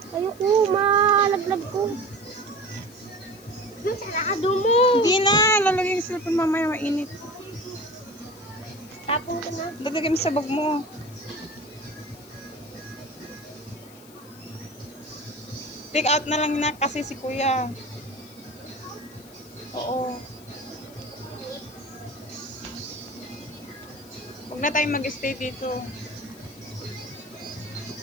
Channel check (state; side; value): noise; left; hiss, 22 dB below the sound